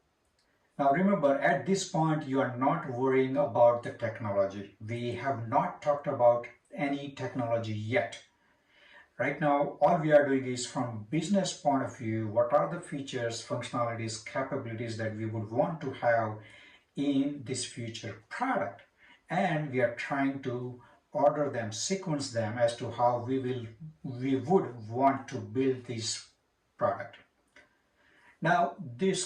Now remember, at this point you are not worrying about the technology. We have not talked about any technology yet. Right now, all we are doing is from business point of view, what are the features, functionalities, capabilities that we would want to have in this future product. And we are trying to order them, sequence them as to how we would want to build this product. Now,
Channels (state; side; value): identical; both; correlation 1.00